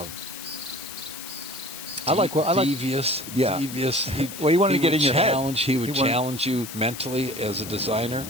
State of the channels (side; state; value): left; noise; hiss, 11 dB below the sound